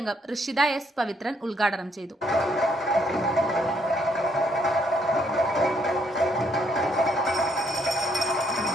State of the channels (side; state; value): both; normal; correlation 0.70